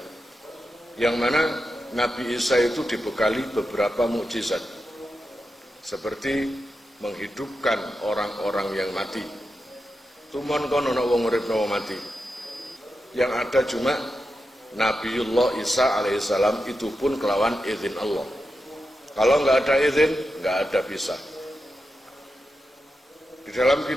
yang mana Nabi Isa itu dibekali beberapa mukjizat seperti menghidupkan orang-orang yang mati. Tumon kono ana wong uripno mati. Yang ada cuma Nabiullah Isa alaihissalam, itu pun kelawan izin Allah. Kalau nggak ada izin, nggak ada bisa. Di dalam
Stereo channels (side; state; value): both; normal; correlation 0.89